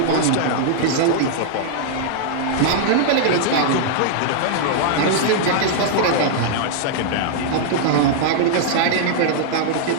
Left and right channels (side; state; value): both; different; correlation -0.01